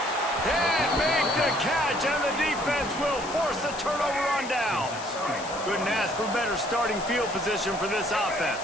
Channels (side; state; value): left; noise; hiss, 13 dB below the sound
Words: And make the catch, and the defense will force a turnover on downs. Couldn't ask for better starting field position for this